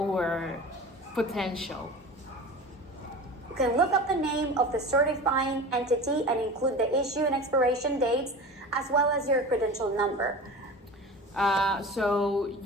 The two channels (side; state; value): both; normal; correlation 0.34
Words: potential. You can look up the name of the certifying entity and include the issue and expiration dates, as well as your credential number. So